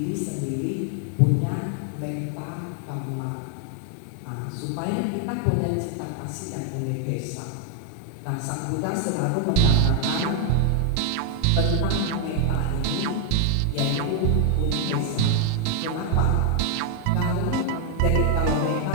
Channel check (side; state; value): both; different; correlation 0.00